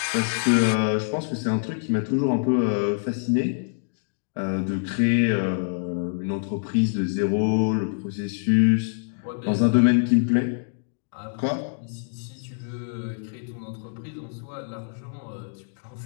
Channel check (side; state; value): right; silent; digital silence